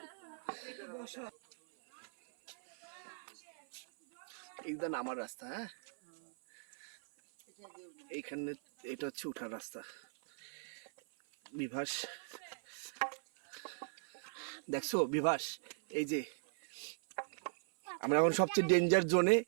এইটা নামার রাস্তা। হ্যাঁ এইখানে এটা হচ্ছে উঠার রাস্তা। বিভাস দেখছো বিভাস, এই যে আমরা এখন সবচেয়ে ডেঞ্জার জোনে।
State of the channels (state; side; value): silent; left; 52 dB below the other